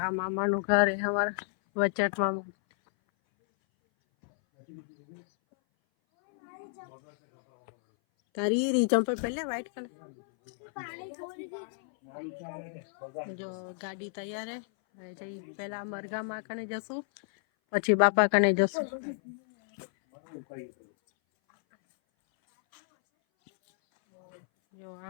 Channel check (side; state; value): right; silent; 57 dB below the other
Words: આ મામાનું ઘર હે અમારા વચટ મામા. તારી રી ચંપલ પહેલે વ્હાઈટ કલર. જો ગાડી તૈયાર હે. જઈ પહેલા મરઘામાં કને જશું, પછી બાપા કને જશું. જો